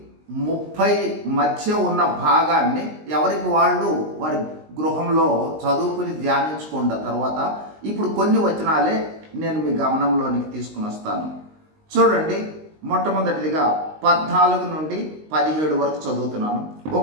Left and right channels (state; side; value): late; left; 19 ms